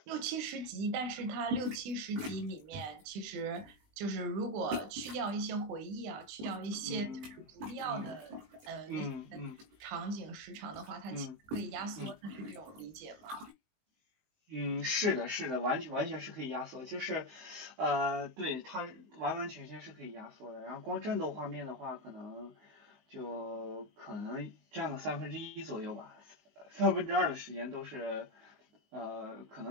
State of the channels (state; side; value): late; left; 19 ms